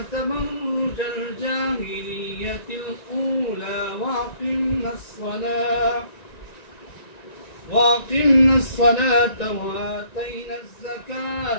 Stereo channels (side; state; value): right; late; 1.9 ms